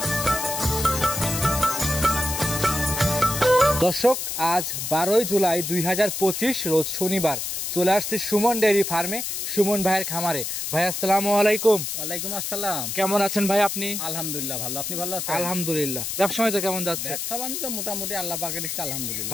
দর্শক, আজ 12 জুলাই 2025 রোজ শনিবার চলে আসছি সুমন ডেয়ারি ফার্মে, সুমন ভাইয়ের খামারে। ভাই আসসালামু আলাইকুম। ওয়ালাইকুম আসসালাম। কেমন আছেন ভাই আপনি? আলহামদুলিল্লাহ ভালো। আপনি ভালো আছেন? আলহামদুলিল্লাহ। ব্যবসা বাণিজ্য কেমন যাচ্ছে? ব্যবসা বাণিজ্য মোটামুটি আল্লাহ পাকের ইচ্ছা আলহামদুলিল্লাহ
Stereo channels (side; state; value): left; noise; hiss, 3 dB below the sound